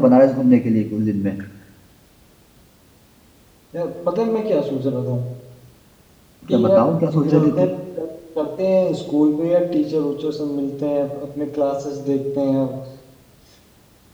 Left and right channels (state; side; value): identical; both; correlation 1.00